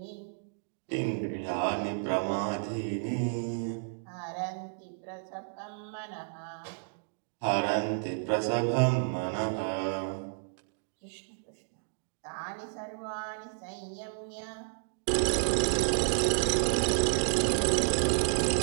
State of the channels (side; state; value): left; silent; digital silence